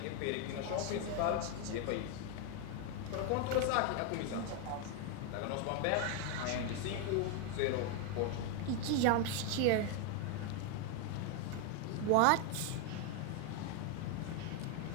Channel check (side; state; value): both; different; correlation 0.01